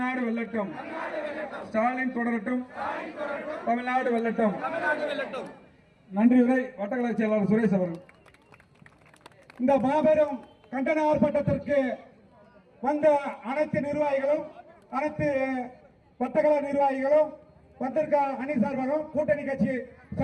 வெல்லட்டும். ஸ்டாலின் தொடரட்டும், தமிழ்நாடு வெல்லட்டும். நன்றி. உரை வட்டக்கழக செயலாளர் சுரேஷ் அவர்கள். இந்த மாபெரும் கண்டன ஆர்ப்பாட்டத்திற்கு வந்த அனைத்து நிர்வாகிகளும், அனைத்து வட்டக்கழக நிர்வாகிகளும், வந்திருக்க அணி சார்பாகவும் கூட்டணி கட்சி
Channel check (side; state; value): both; identical; correlation 1.00